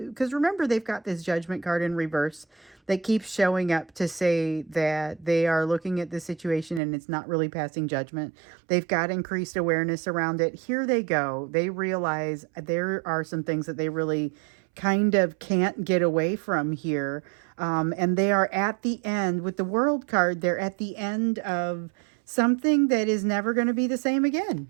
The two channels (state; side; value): drops out; left; at 6.8 s